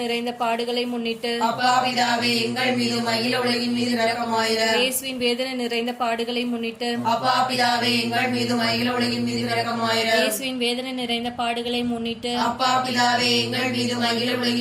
நிறைந்த பாடுகளை முன்னிட்டு அப்பா பிதாவே, எங்கள் மீதும் அகில உலகின் மீதும் இரக்கமாயிரம். இயேசுவின் வேதனை நிறைந்த பாடுகளை முன்னிட்டு அப்பா பிதாவே, எங்கள் மீதும் அகில உலகின் மீதும் இரக்கமாயிரம். இயேசுவின் வேதனை நிறைந்த பாடுகளை முன்னிட்டு அப்பா பிதாவே, எங்கள் மீதும் அகில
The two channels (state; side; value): identical; both; correlation 1.00